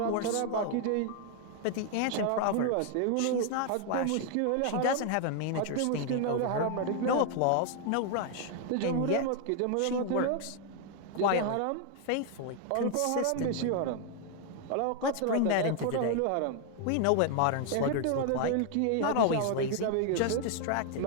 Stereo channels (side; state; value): both; different; correlation 0.00